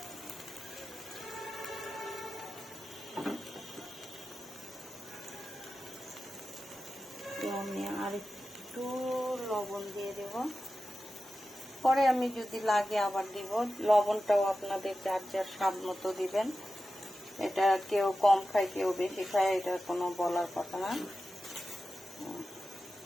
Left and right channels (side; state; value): both; normal; correlation 0.93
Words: আমি আর একটু লবণ দিয়ে দেব। পরে আমি যদি লাগে আবার দিব। লবণটাও আপনাদের যার যার স্বাদ মতো দিবেন। এটা কেউ কম খায় কেউ বেশি খায়, এটা কোনো বলার কথা না।